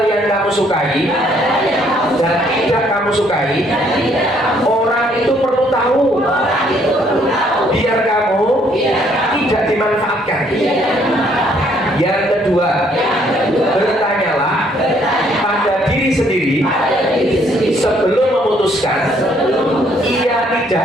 yang kamu sukai dan tidak kamu sukai, orang itu perlu tahu, biar kamu tidak dimanfaatkan. Yang kedua, bertanyalah pada diri sendiri sebelum memutuskan iya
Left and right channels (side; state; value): both; normal; correlation 0.66